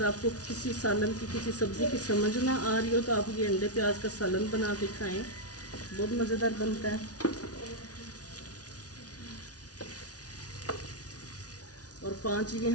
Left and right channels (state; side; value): late; right; 0.68 ms